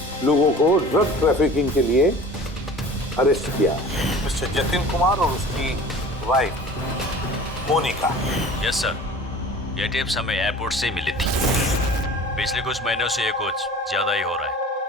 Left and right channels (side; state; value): both; normal; correlation 0.42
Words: लोगों को ड्रग ट्रैफिकिंग के लिए अरेस्ट किया, मिस्टर जतिन कुमार और उसकी वाइफ मोनिका। यस सर, ये टिप्स हमें एयरपोर्ट से मिली थी। पिछले कुछ महीनों से ये कुछ ज्यादा ही हो रहा